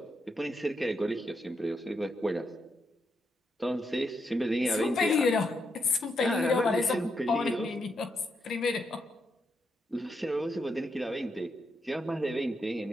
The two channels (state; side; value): normal; both; correlation 0.81